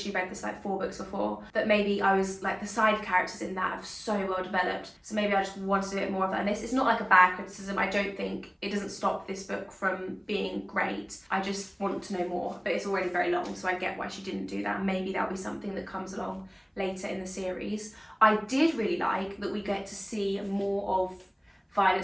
read this like 4 books before, that maybe I was like, the side characters in that have so well developed, so maybe I just wanted a bit more of that. And this is not like a bad criticism. I don't think it doesn't stop this book from being great. I just want to know more, but it's already very long, so I get why she didn't do that. Maybe that'll be something that comes along later in the series. I did really like that we get to see more of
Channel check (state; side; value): identical; both; correlation 1.00